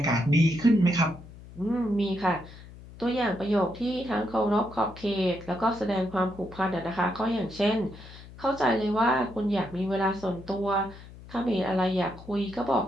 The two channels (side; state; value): left; noise; hum, 18 dB below the sound